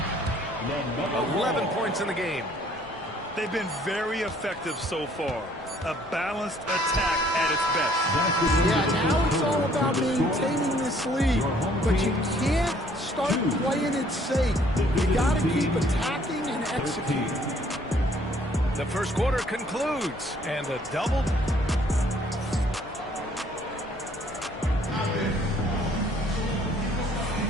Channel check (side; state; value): both; normal; correlation 0.61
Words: 11 points in the game. They've been very effective so far. A balanced attack at its best. Yeah, now it's all about maintaining this lead, but you can't start playing it safe. You got to keep attacking and executing. The first quarter concludes, and a double.